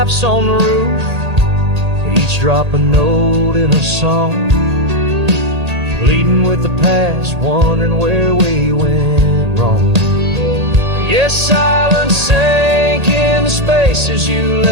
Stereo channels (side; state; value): left; late; 1.8 ms